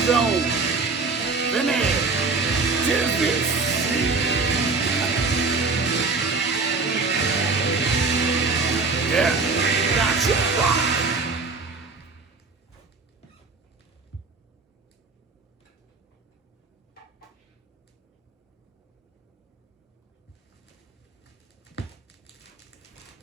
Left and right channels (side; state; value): left; quieter; 4.1 dB